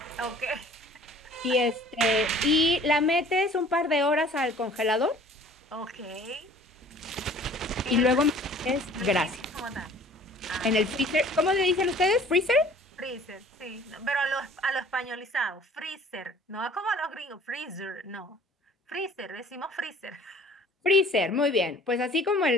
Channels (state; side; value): normal; both; correlation 0.50